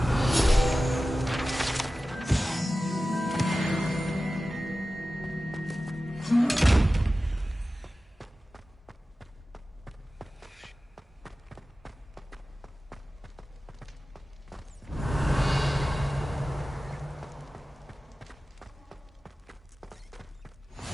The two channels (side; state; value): both; normal; correlation 0.95